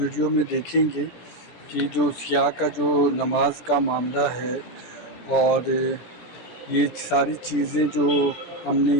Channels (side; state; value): right; late; 17 ms